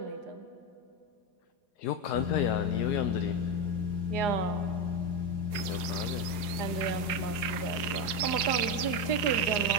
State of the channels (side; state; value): right; late; 4.8 ms